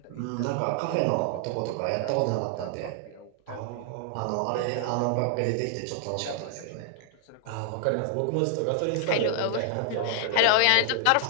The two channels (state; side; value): different; both; correlation 0.00